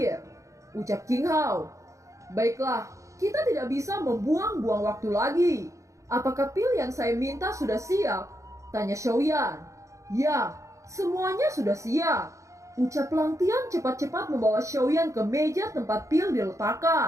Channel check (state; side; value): late; left; 0.15 ms